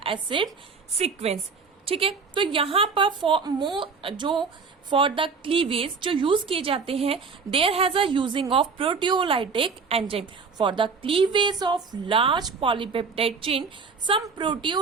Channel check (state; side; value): quieter; left; 5.0 dB